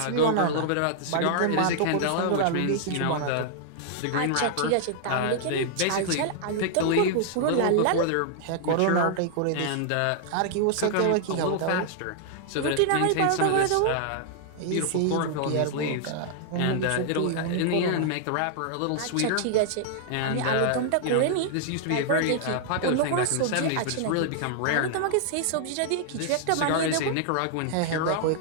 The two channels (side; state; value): both; different; correlation -0.01